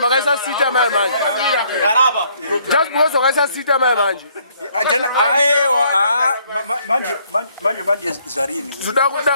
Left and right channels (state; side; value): inverted; both; correlation -0.66